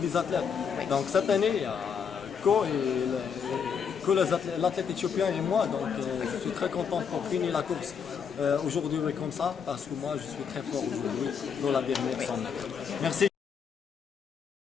athlètes. Donc cette année, il y a que l'athlète éthiopien et moi. Donc je suis très content pour finir la course aujourd'hui comme ça, parce que moi je suis très fort aujourd'hui dans la dernière 100 mètres. Merci.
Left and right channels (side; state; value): right; quieter; 6.8 dB